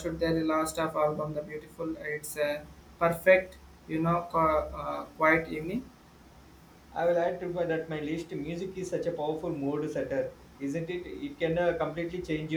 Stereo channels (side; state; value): both; identical; correlation 1.00